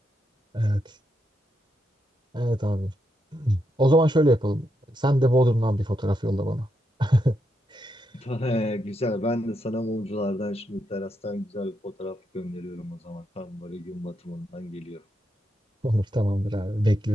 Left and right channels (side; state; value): both; normal; correlation 0.82